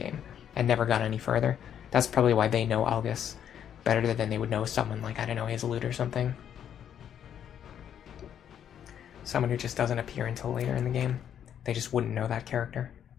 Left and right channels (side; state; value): right; quieter; 9.3 dB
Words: and never got any further. That's probably why they know Algus better than they would know someone like, I don't know, Hazelute or something. Someone who just doesn't appear until later in the game. They just wouldn't know that character.